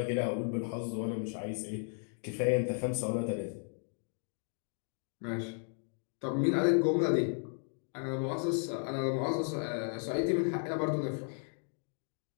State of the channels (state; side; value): silent; right; 55 dB below the other